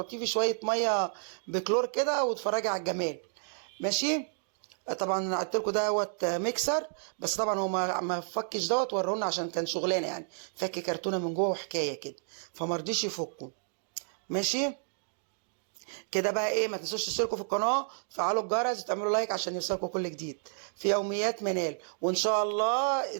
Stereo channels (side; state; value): left; silent; digital silence